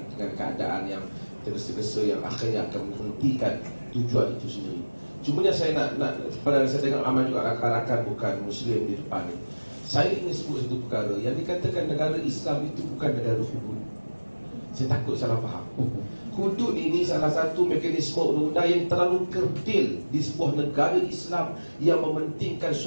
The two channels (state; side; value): inverted; both; correlation -1.00